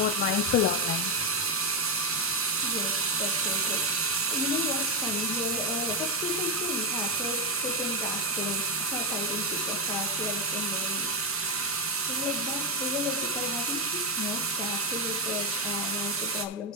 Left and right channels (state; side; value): normal; both; correlation 0.07